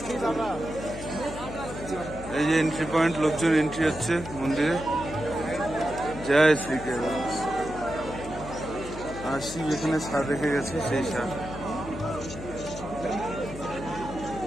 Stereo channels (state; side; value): noise; left; hum, 11 dB below the sound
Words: এই যে এন্ট্রি পয়েন্ট, লোকজন এন্ট্রি হচ্ছে মন্দিরে। জয় শ্রী কেদার। আর শিব এখানে সার রেখে গেছে, সেই সার।